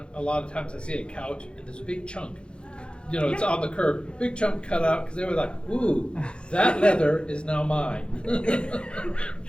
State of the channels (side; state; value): right; late; 0.055 ms